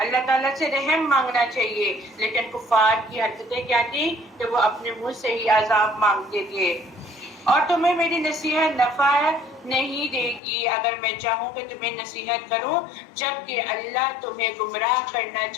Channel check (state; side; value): drops out; right; at 10.4 s